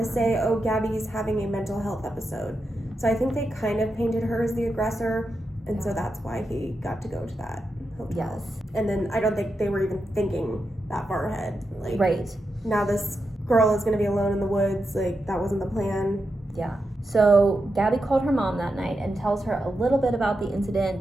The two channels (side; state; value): both; normal; correlation 0.87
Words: say, oh, Gabby's having a mental health episode. So I think they kind of painted her as the aggressor, and so that's why he got to go to that hotel. Yes. And then I don't think they were even thinking that far ahead. Like, right. Now this girl is going to be alone in the woods. Like, that wasn't the plan. Yeah. So Gabby called her mom that night and tells her a little bit about the